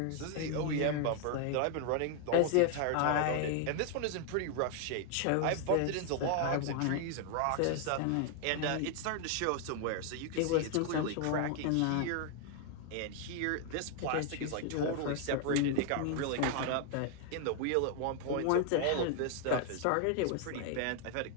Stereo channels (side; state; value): both; different; correlation 0.00